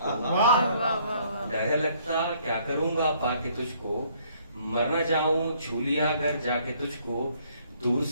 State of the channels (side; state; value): both; inverted; correlation -0.63